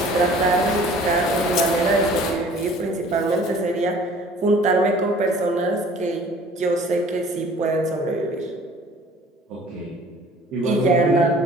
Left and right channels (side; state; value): both; normal; correlation 0.50